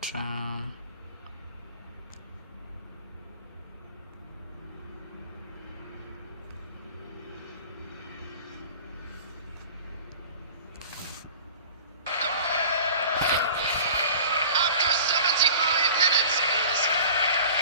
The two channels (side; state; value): both; inverted; correlation -0.41